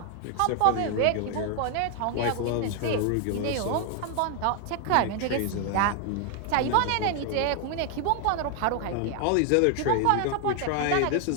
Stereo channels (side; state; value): both; different; correlation 0.01